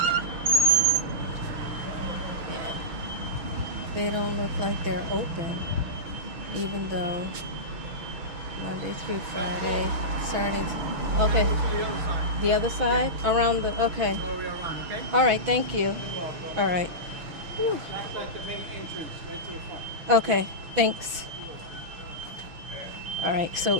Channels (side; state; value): left; late; 6.0 ms